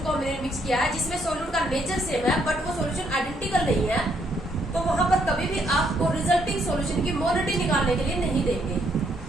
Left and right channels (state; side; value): normal; both; correlation 0.71